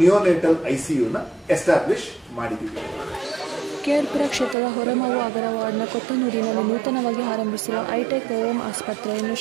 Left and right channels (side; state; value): left; drops out; at 4.5 s